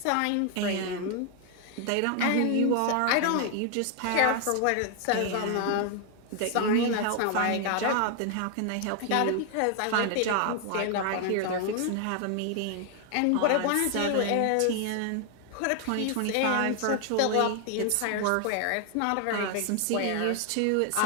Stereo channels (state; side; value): different; both; correlation 0.00